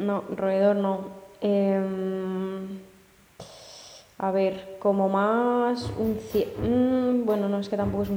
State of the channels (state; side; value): identical; both; correlation 1.00